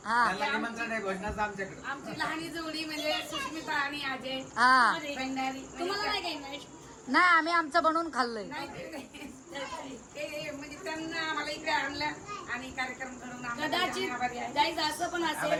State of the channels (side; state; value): both; identical; correlation 1.00